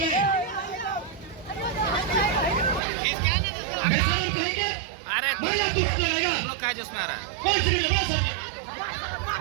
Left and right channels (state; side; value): drops out; left; at 2.8 s